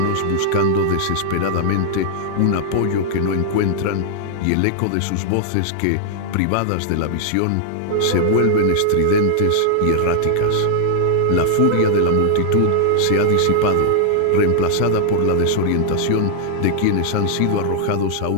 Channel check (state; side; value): different; both; correlation -0.01